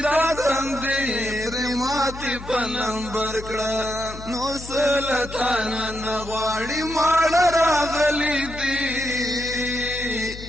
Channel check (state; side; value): noise; left; hum, 13 dB below the sound